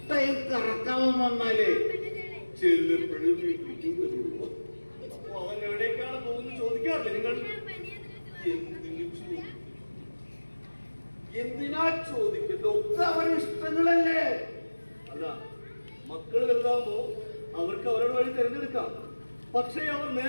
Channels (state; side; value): inverted; both; correlation -1.00